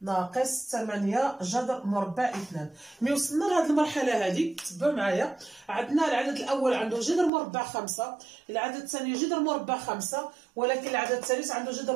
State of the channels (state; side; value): drops out; left; at 7.3 s